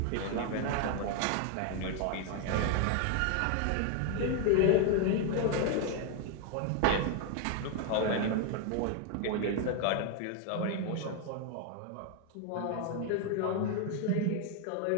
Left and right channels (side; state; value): both; different; correlation 0.00